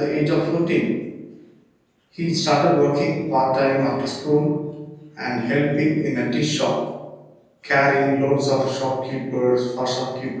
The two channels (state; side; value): identical; both; correlation 1.00